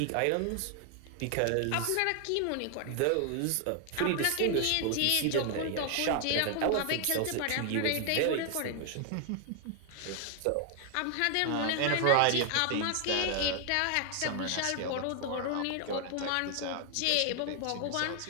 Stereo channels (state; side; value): different; both; correlation 0.00